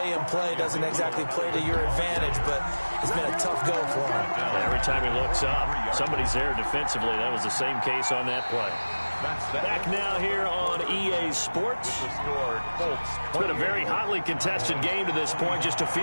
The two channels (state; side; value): inverted; both; correlation -1.00